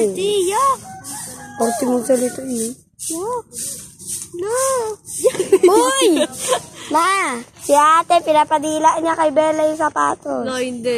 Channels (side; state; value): both; identical; correlation 1.00